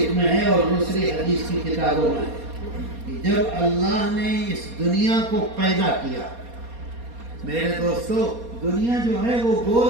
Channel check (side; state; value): left; late; 4.2 ms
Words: میں ہے اور دوسری حدیث کی کتابوں میں ہے، جب اللہ نے اس دنیا کو پیدا کیا۔ میرے دوستو دنیا جو ہے وہ